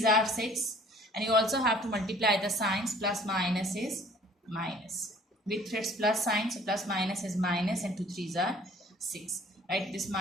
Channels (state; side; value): normal; both; correlation 0.54